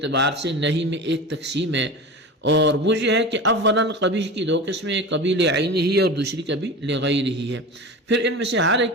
سے نہی میں ایک تقسیم ہے، اور وہ یہ ہے کہ اولاً قبیح کی دو قسمیں، کبھی لعینہ ہی اور دوسری کبھی لغیرہ ہی ہے، پھر ان میں سے ہر ایک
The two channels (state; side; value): normal; both; correlation 0.30